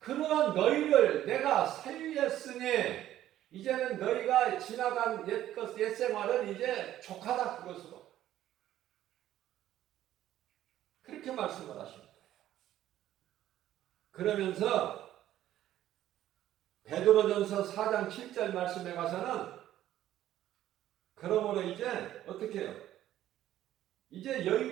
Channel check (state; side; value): quieter; left; 12.8 dB